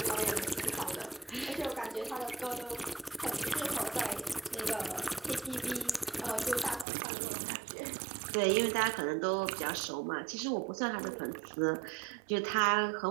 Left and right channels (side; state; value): left; drops out; at 6.9 s